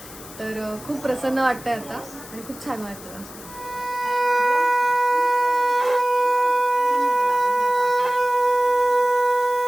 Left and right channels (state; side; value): noise; left; hiss, 17 dB below the sound